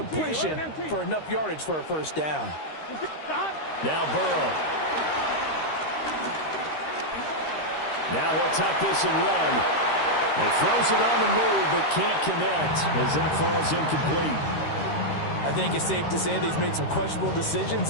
for enough yardage for a 1st down. Now Burrow. Now he'll tuck this and run. He throws it on the move, but can't connect as that falls incomplete. I think it's safe to say that he's made some questionable decisions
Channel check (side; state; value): right; late; 13 ms